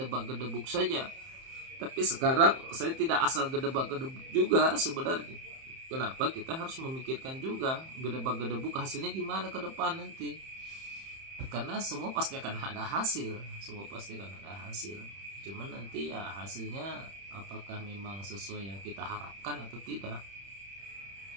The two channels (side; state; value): left; late; 31 ms